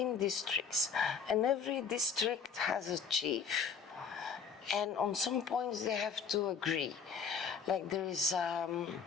districts, and every district has a chief. And on some points they have to agree. Like there is a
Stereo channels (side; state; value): right; quieter; 6.2 dB